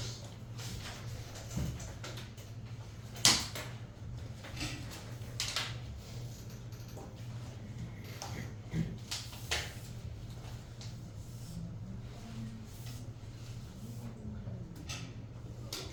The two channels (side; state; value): both; identical; correlation 1.00